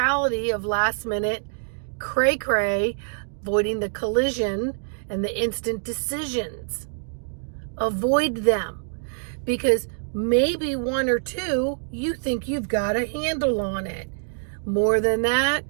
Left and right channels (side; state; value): left; silent; digital silence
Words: of last minute cray-cray, avoiding the collision and the instant decisions. Avoid them, because maybe one or two, you think you've got a handle on it. More than that,